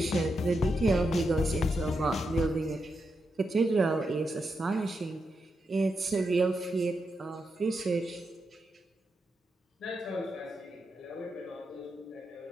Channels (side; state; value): both; normal; correlation 0.85